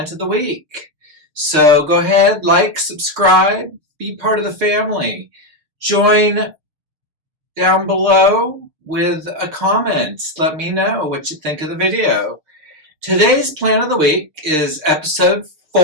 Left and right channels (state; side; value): late; left; 6.5 ms